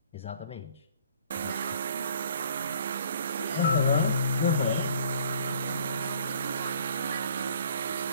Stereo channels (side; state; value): both; inverted; correlation -0.56